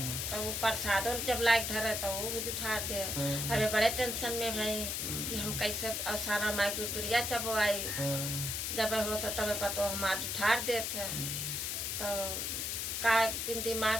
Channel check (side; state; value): left; noise; hiss, 1 dB below the sound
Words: तो वो प्रसादों जब लायक धरे तो वो भी उठा दे। अबे बड़े टेंशन में भाई कि हम कैसे साना माई दूरिया चपवाई। जब हो तो तब पतो हमार उठार देते। तो का दिन